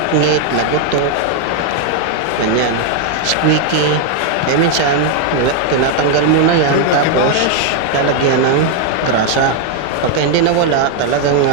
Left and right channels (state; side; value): different; both; correlation 0.00